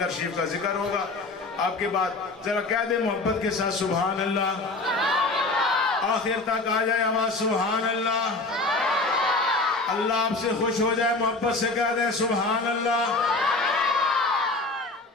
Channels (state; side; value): quieter; right; 3.3 dB